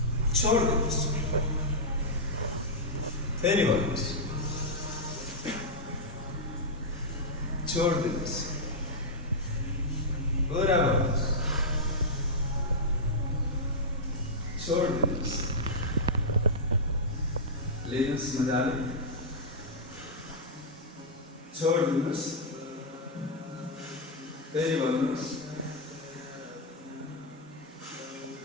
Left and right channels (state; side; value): normal; both; correlation -0.07